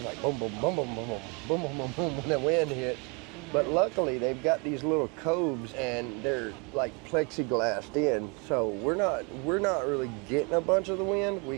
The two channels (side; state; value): left; quieter; 32.1 dB